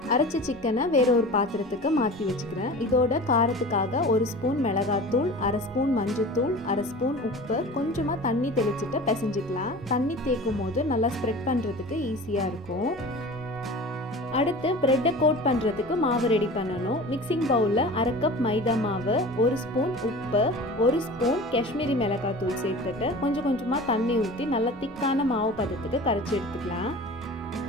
அரைச்ச சிக்கனை வேற ஒரு பாத்திரத்துக்கு மாற்றி வச்சுக்கிறேன். இதோட காரத்துக்காக 1 ஸ்பூன் மிளகாத்தூள், 1/2 ஸ்பூன் மஞ்சத்தூள், 1/2 ஸ்பூன் உப்பு, கொஞ்சமாக தண்ணி தெளிச்சுட்டு பிசைஞ்சிக்கலாம். தண்ணி தேய்க்கும் போது நல்லா ஸ்ப்ரெட் பண்ணுறதுக்கு ஈஸியாக இருக்கும். அடுத்து ப்ரெட்டை கோட் பண்ணுறதுக்கு மாவு ரெடி பண்ணணும். மிக்சிங் பவுலில் 1/2 கப் மைதா மாவு, 1 ஸ்பூன் உப்பு, 1 ஸ்பூன் காஷ்மீரி மிளகாத்தூள் சேர்த்துட்டு கொஞ்சம் கொஞ்சமாக தண்ணி ஊற்றி நல்லா திக்கான மாவு பதத்துக்கு கரைச்சி எடுத்துக்கலாம்.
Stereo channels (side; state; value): both; normal; correlation 0.37